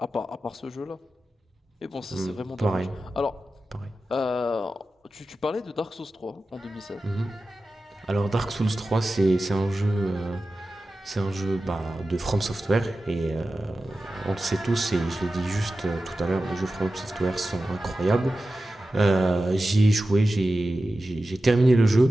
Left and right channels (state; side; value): normal; both; correlation 0.94